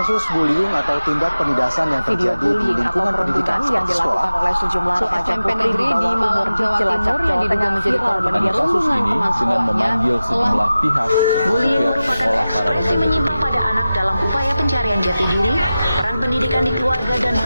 bullying atau tindak penindasan yang terjadi di lingkungan pendidikan yang dilakukan oleh sejumlah remaja putri negeri di Malang, Jawa Timur yang diduga menjadi korban perundungan teman sekolahnya sejumlah pihak. Bullying merupakan ekspresi menyimpang pada anak dalam upaya pencarian jati diri. Peran pendidikan di keluarga dan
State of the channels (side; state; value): both; inverted; correlation -0.94